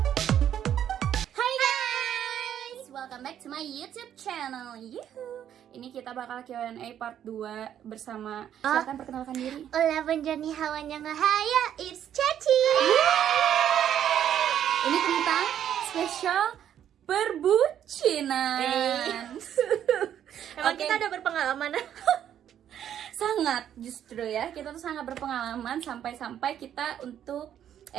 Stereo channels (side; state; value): left; quieter; 10.1 dB